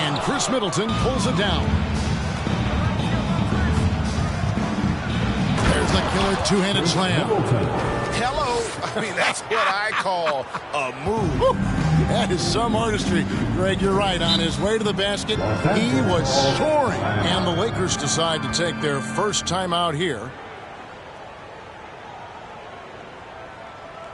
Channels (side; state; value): both; identical; correlation 1.00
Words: Chris Middleton pulls it down. There's the killer two-handed slam. Hello. I mean, that's what I call a move. Woo. That is some artistry. Greg, you're right. On his way to the basket, he was soaring. And the Lakers decide to take their first time out here.